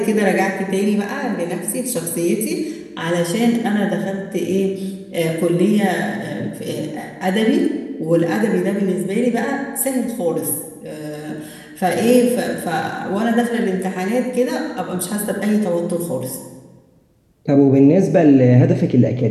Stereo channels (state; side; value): identical; both; correlation 1.00